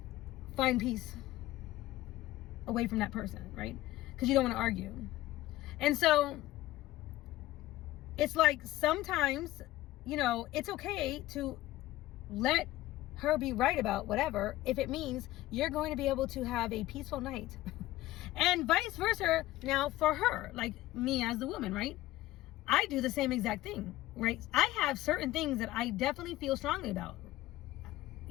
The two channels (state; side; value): quieter; right; 16.3 dB